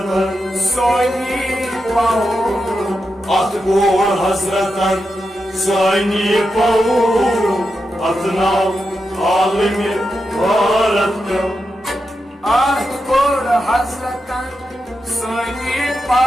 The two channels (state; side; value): normal; both; correlation 0.88